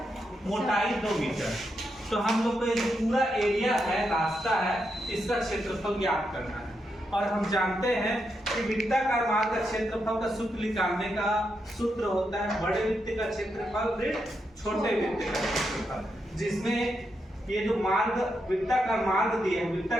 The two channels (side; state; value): both; normal; correlation 0.83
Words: मोटाई 2 मीटर। तो हम लोग को ये जो पूरा एरिया है, रास्ता है, इसका क्षेत्रफल ज्ञात करना है। और हम जानते हैं कि वृत्ताकार मार्ग का क्षेत्रफल का सूत्र निकालने का सूत्र होता है बड़े वृत्त का क्षेत्रफल ऋण छोटे वृत्त का क्षेत्रफल, जिसमें ये जो मार्ग वृत्ताकार मार्ग दिया है,